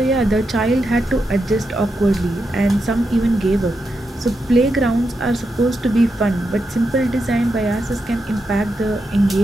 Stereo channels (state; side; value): normal; both; correlation 0.86